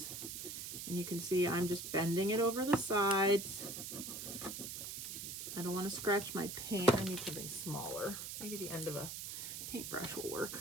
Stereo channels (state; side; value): noise; right; hiss, 7 dB below the sound